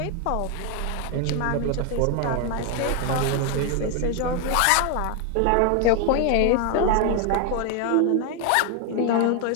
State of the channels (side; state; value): both; different; correlation 0.01